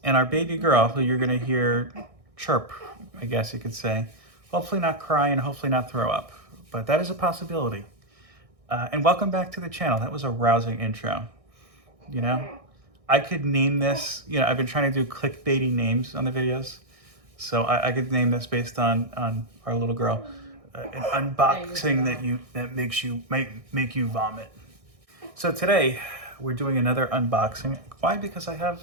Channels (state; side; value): late; left; 1.6 ms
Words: and our baby girl, who you're going to hear chirp, I guess you could say. Hopefully not cry and hopefully not throw up, but that is a possibility. And welcome back to the channel. That was a rousing intro. You know, I could name this, I've been trying to do clickbaity names on the videos. So I could name this based on our little girl, an unboxing that might make you vomit. So today we're doing another unboxing. Why? Because I have